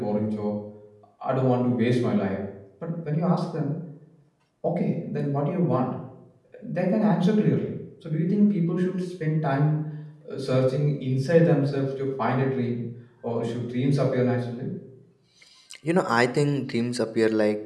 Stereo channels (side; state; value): both; identical; correlation 1.00